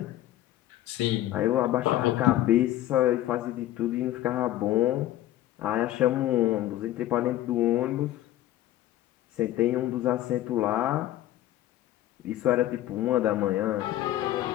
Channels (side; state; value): right; quieter; 13.9 dB